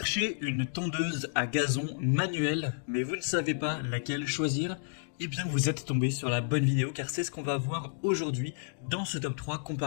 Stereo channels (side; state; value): right; silent; digital silence